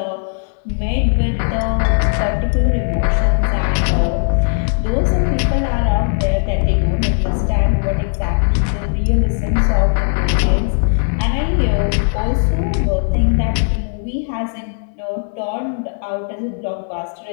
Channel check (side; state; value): right; silent; digital silence